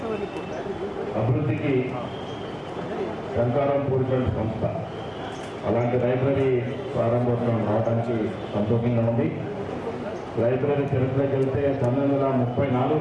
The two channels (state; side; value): identical; both; correlation 1.00